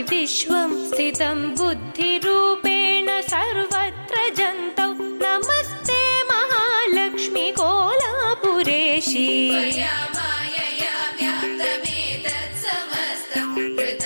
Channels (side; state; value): both; inverted; correlation -1.00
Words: विश्वं स्थितं बुद्धिरूपेण सर्वत्र जन्तौ नमस्ते महालक्ष्मी कोलापुरेशी त्वया मायया व्याप्तमेतत् समस्तं